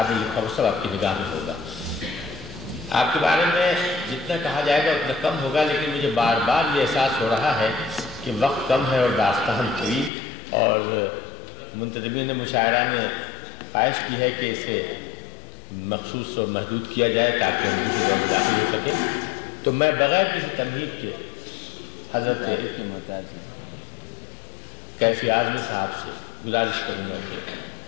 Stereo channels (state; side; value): drops out; right; at 10.1 s